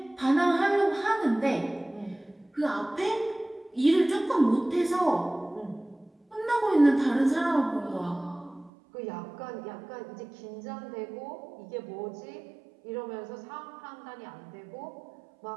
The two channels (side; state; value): left; drops out; at 8.7 s